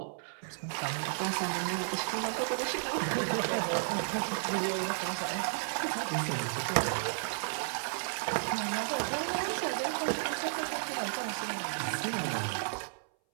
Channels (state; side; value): silent; left; 56 dB below the other